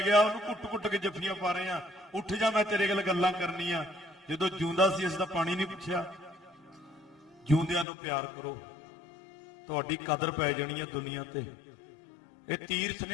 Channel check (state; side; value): drops out; right; at 7.9 s